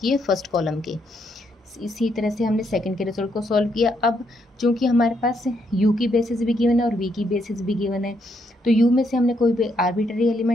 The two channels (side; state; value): both; normal; correlation 0.76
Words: फर्स्ट कॉलम के। इसी तरह से हमने सेकंड के रिजल्ट को सॉल्व किया। अब चूंकि हमारे पास यू की बेसिस भी गिवन है और वी की बेसिस भी गिवन है, तो यू में से हमने कोई भी आर्बिट्ररी